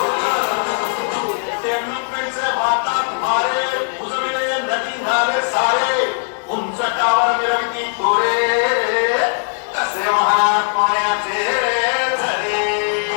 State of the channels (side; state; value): right; silent; 63 dB below the other